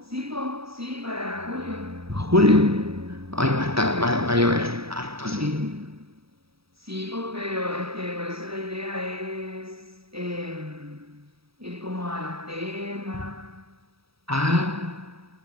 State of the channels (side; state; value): left; late; 0.77 ms